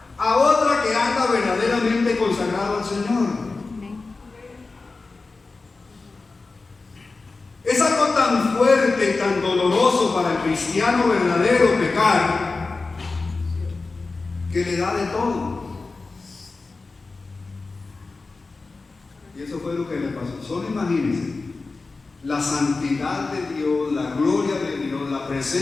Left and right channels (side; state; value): right; quieter; 3.8 dB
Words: a otra que anda verdaderamente consagrado al Señor. Es algo tan fuerte y tan doloroso para el cristiano verdadero pecar, que le da de todo. Y eso fue lo que le pasó. Solo imagínense la santidad de Dios, la gloria de Dios, la